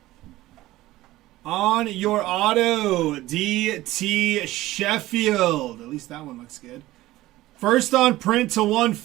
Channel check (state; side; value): quieter; left; 16.8 dB